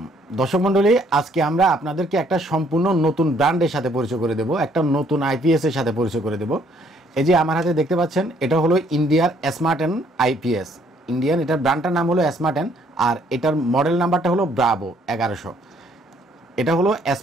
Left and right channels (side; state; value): both; normal; correlation 0.65